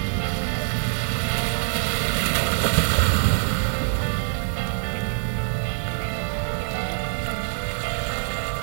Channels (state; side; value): silent; left; 62 dB below the other